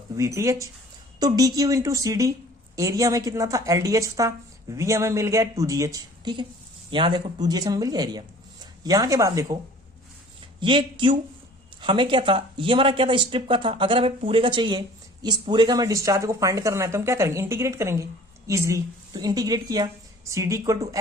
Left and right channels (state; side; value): normal; both; correlation 0.49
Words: VTH। तो DQ इंटू CD एरिया में कितना था, LDH था, V हमें मिल गया 2GH, ठीक है। यहां देखो 2GH हमें मिल गया एरिया। यहां के बाद देखो ये Q हमें क्या था, ये हमारा क्या था, स्ट्रिप का था। अगर हमें पूरे का चाहिए, इस पूरे का हमें डिस्चार्ज को फाइंड करना है तो हम क्या करेंगे, इंटीग्रेट करेंगे इजिली। तो इंटीग्रेट किया, CD equal to